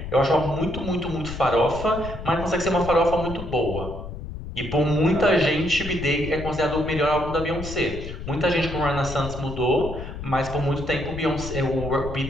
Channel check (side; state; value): left; noise; rumble, 9 dB below the sound